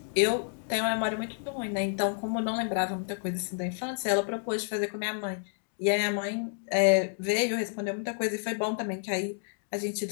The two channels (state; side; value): silent; right; digital silence